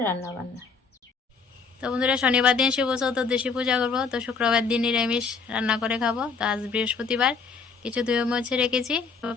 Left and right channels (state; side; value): quieter; right; 5.0 dB